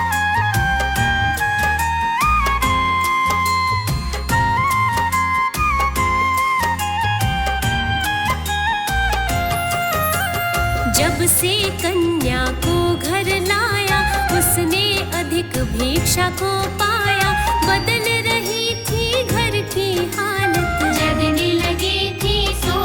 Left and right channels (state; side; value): identical; both; correlation 1.00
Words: से कन्या को घर लाया, उसने अधिक भिक्षा को पाया। बदल रही थी घर की हालत, जगने लगी थी